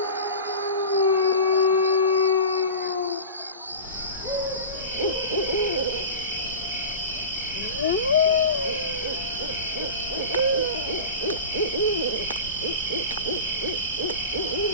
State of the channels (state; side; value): inverted; both; correlation -0.31